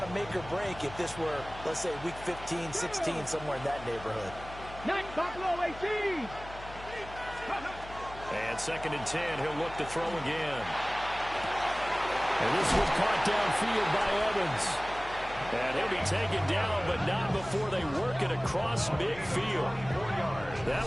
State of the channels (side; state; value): left; noise; hum, 15 dB below the sound